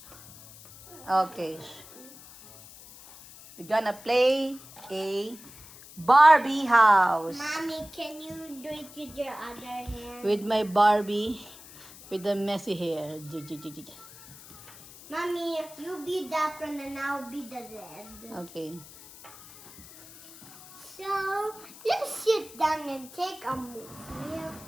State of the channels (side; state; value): left; noise; hiss, 19 dB below the sound